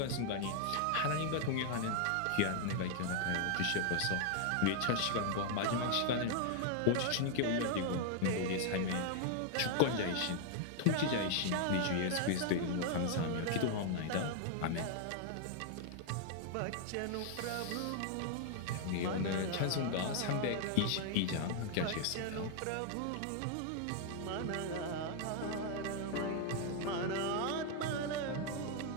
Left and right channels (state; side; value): different; both; correlation 0.00